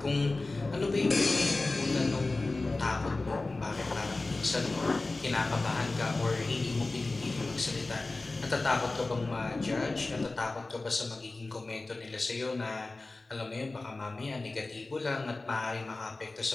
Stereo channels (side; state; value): right; quieter; 3.2 dB